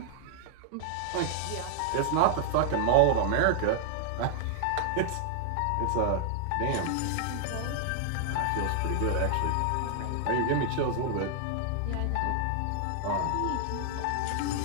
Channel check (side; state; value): both; different; correlation 0.00